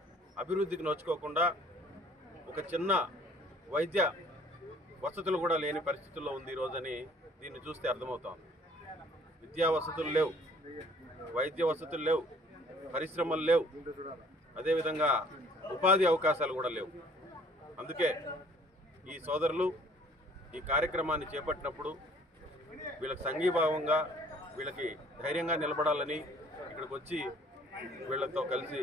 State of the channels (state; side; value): normal; both; correlation 0.56